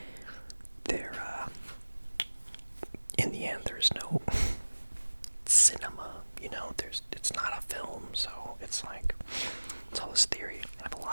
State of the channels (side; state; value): both; inverted; correlation -1.00